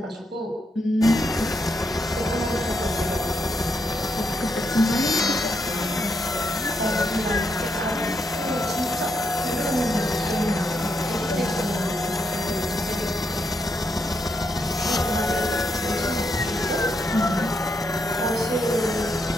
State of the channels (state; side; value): normal; both; correlation 0.80